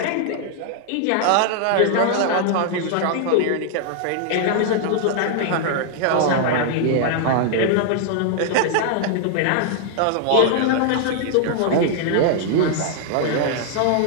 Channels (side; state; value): both; different; correlation 0.00